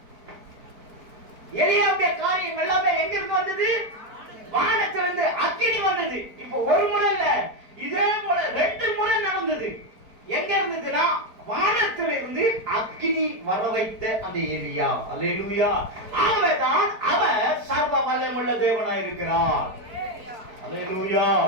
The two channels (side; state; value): left; late; 4.5 ms